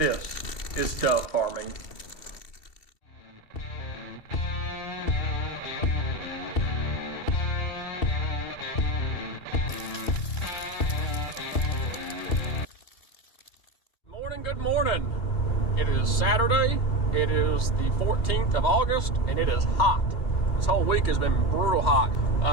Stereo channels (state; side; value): late; right; 2.6 ms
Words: is dove farming. Good morning. It is Saturday. It is the 14th of August and it is hot. This whole week has been brutal hot.